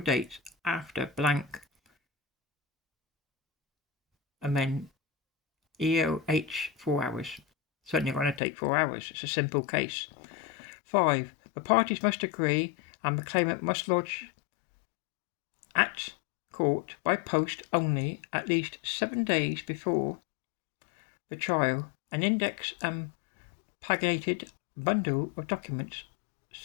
after blank and then EOH 4 hours. Certainly going to take 4 hours. It's a simple case. 5. The parties must agree and the claimant must lodge at court by post only at least 7 days before the trial an index and paginated bundle of documents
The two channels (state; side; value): drops out; right; at 8.4 s